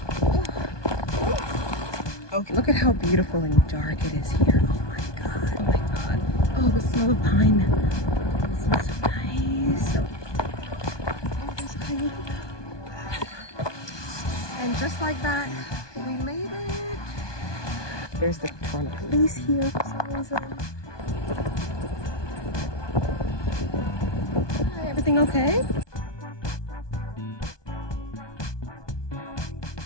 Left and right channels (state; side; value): late; right; 1.2 ms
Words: Ooh. Okay, look at how beautiful and dark it is here. Oh my god. Oh my god. Oh, the smell of pine. It smells so nice. So, oh, there's coyotes. And just like that, we made it. There's the Toronto police here for some reason. Hi, everything okay?